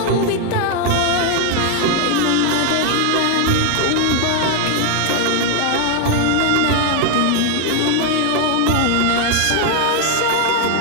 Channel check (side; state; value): both; different; correlation 0.00